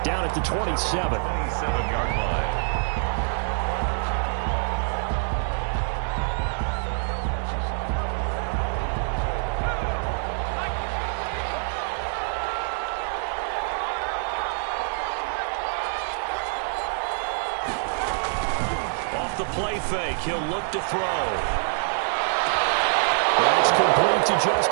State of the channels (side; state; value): left; silent; digital silence